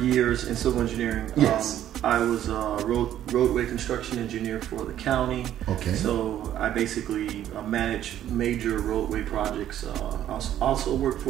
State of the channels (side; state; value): left; quieter; 11.5 dB